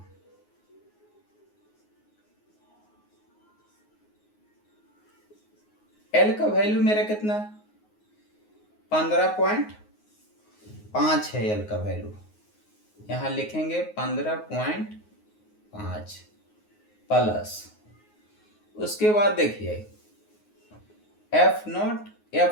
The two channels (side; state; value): right; late; 9.5 ms